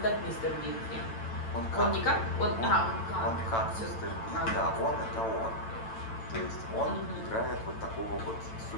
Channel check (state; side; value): late; right; 9.0 ms